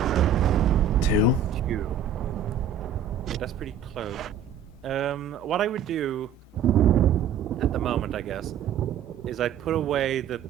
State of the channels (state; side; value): quieter; left; 7.3 dB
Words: 2. 2. Okay, that's pretty close. What I would do at the moment, I guess, is I'd put away the